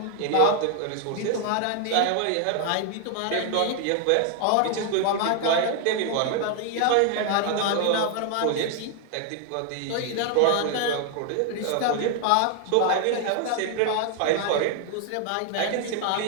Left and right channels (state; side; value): different; both; correlation 0.00